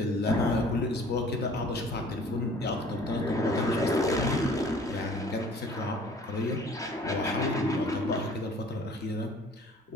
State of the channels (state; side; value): normal; both; correlation 0.51